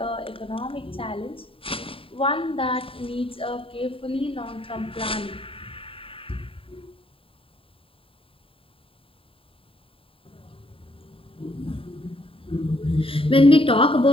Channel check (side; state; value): right; late; 0.27 ms